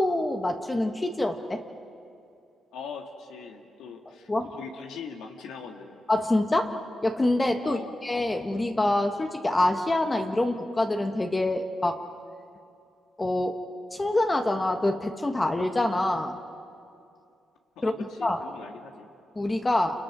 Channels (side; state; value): both; normal; correlation 0.94